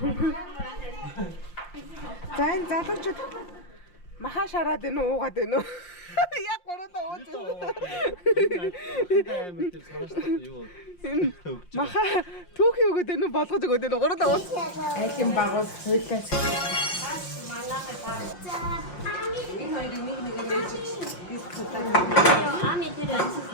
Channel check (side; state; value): right; late; 5.6 ms